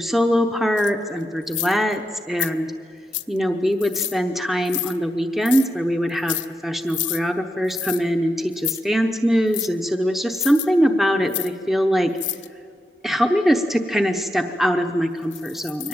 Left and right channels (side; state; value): both; normal; correlation 0.86